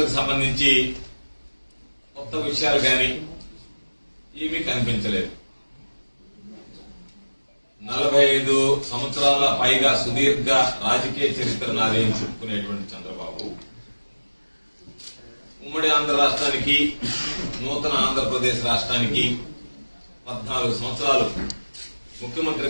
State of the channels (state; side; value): inverted; both; correlation -1.00